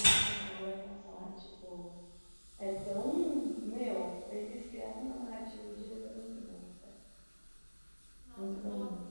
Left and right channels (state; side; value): inverted; both; correlation -1.00